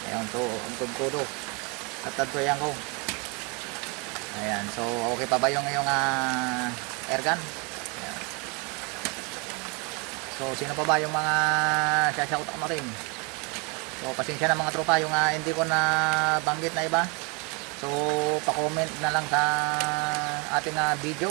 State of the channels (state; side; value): quieter; left; 31.5 dB